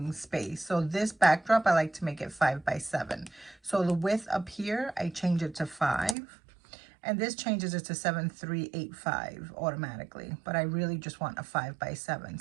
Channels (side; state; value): left; drops out; at 6.2 s